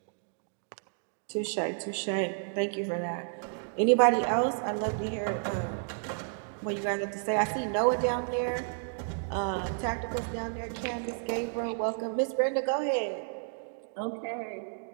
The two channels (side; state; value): left; silent; digital silence